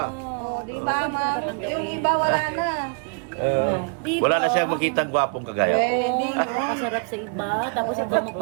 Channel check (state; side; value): quieter; left; 38.9 dB